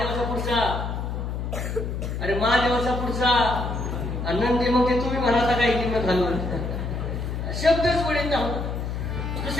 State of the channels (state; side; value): noise; left; hum, 3 dB below the sound